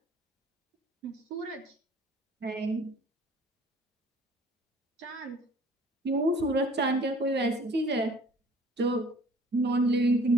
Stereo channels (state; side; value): normal; both; correlation 0.52